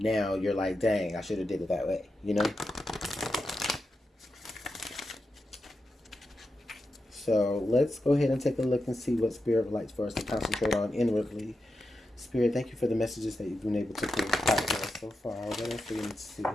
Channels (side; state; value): both; normal; correlation 0.89